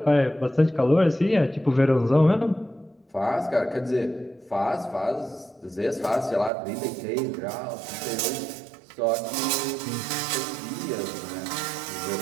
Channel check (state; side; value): drops out; left; at 6.5 s